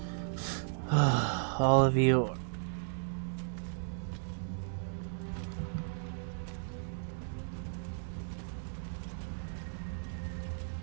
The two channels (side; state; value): left; silent; digital silence